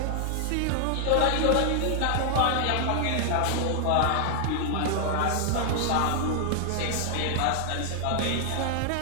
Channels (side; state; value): both; different; correlation 0.00